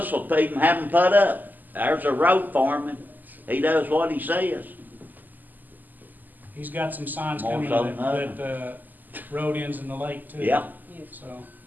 will even have them put up. There's a road foreman. He does what he says. He's got some signs More coming so than that road ends in the lake too. Yeah. So,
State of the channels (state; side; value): late; left; 0.085 ms